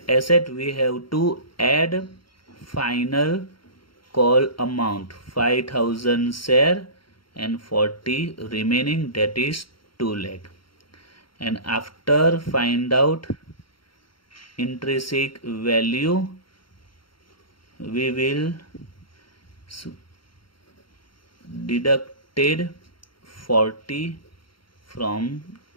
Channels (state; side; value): late; right; 0.73 ms